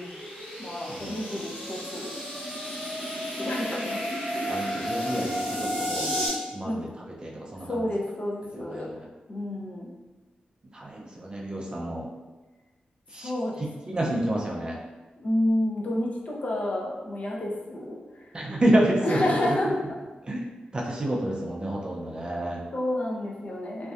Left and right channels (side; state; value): both; normal; correlation 0.87